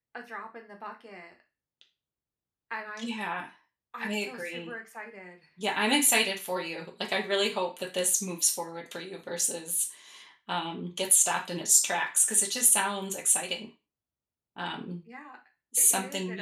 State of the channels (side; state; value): both; identical; correlation 1.00